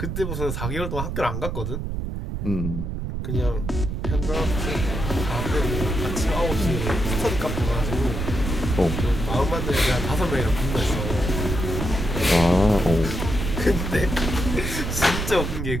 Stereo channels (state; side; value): noise; right; rumble, 3 dB below the sound